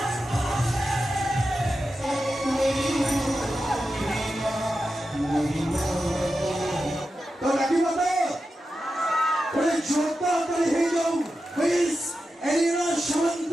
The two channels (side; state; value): both; normal; correlation 0.91